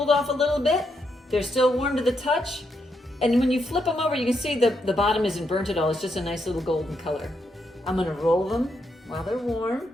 off a little bit. They're still warm to the touch. And when you flip them over, you can see the bottom isn't burnt at all. It's just a nice little golden color. I'm going to roll them while they're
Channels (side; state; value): both; normal; correlation 0.80